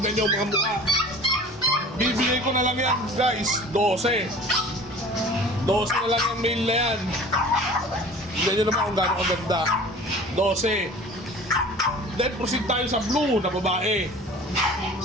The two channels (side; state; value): both; normal; correlation 0.43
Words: nyo mga mukha. Bibigay ko na lang yan guys, 12. 12 na lang yung male na yan. Tingnan nyo naman kung gano'ng kaganda. 12. Then proceed tayo sa blue na babae.